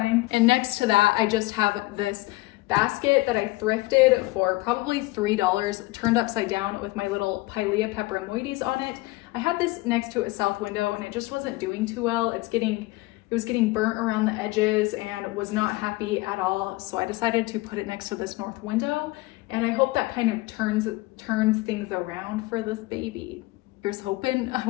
And next to that, I just have this basket that I thrifted for probably $3, turned upside down with my little Pilea peperomoides on it. I had this next to a south window and it just wasn't doing too well. It was getting burnt around the edges and was not happy at all. So I decided to put it next to this north window, and I hope that kind of turns things around for this baby. Here's hoping. I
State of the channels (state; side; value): quieter; right; 20.7 dB